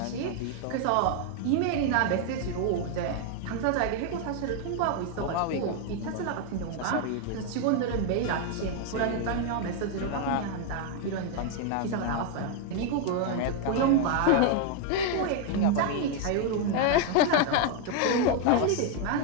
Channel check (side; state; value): both; different; correlation 0.01